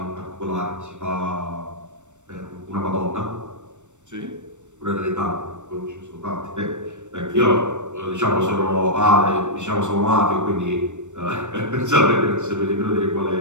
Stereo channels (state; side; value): late; left; 0.84 ms